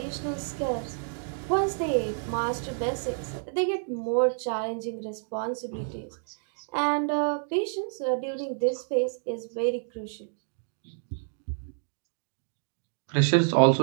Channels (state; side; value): silent; left; digital silence